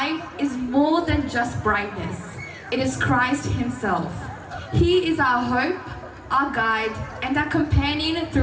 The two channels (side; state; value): both; identical; correlation 1.00